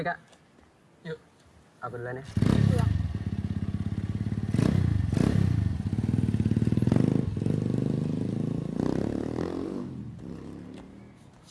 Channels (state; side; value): identical; both; correlation 1.00